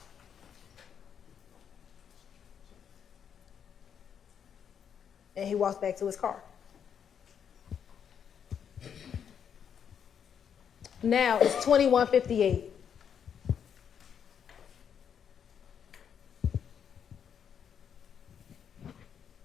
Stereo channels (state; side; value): quieter; right; 7.9 dB